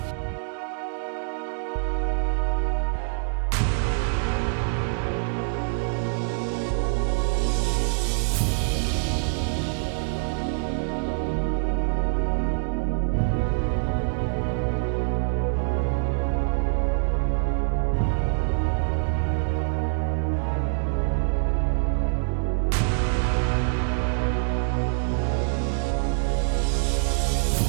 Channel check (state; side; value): silent; left; digital silence